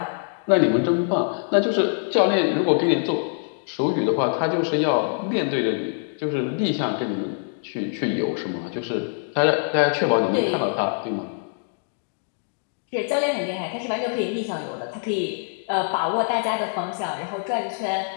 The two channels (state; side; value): silent; right; digital silence